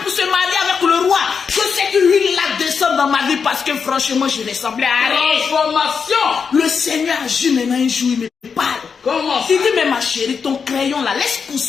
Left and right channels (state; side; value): quieter; right; 6.0 dB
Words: pour se marier avec le roi. Je sais que l'huile là descend dans ma vie parce que franchement, je ressemblais à rien. Transformation. Le Seigneur agit maintenant un jour, il me parle. Comment ça? Il dit, mais ma chérie, ton crayon là, laisse